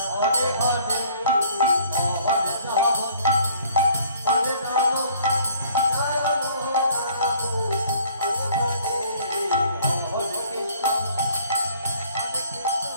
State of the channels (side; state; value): both; inverted; correlation -0.56